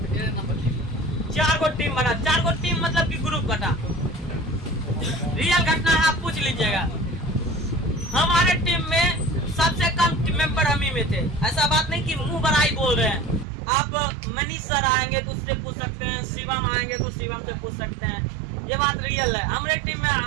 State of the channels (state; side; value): drops out; left; at 13.5 s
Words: 4 गो टीम बना, 4 गो टीम मतलब कि ग्रुप बना। रियल घटना है, आप पूछ लीजिएगा। हमारे टीम में सबसे कम टीम मेंबर हम ही में थे। ऐसा बात नहीं कि मुंह बड़ाई बोल रहे हैं। आप मनीष सर आएंगे तो उससे पूछ सकते हैं, शिवम आएंगे तो शिवम से पूछ सकते हैं, ये बात रियल है। हमारे टीम में